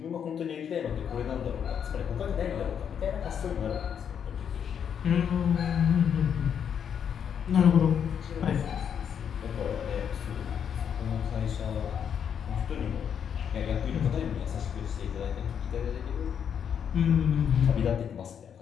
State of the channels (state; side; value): quieter; right; 8.0 dB